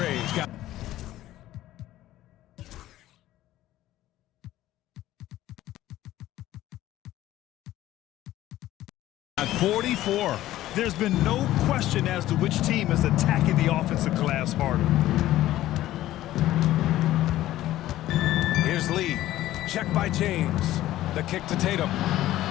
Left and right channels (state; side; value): quieter; right; 14.6 dB